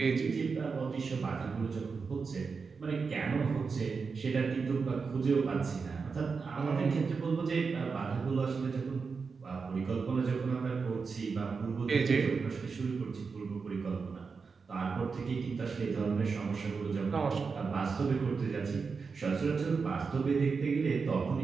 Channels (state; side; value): quieter; left; 5.1 dB